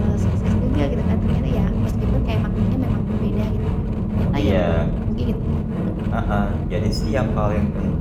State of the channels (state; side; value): identical; both; correlation 1.00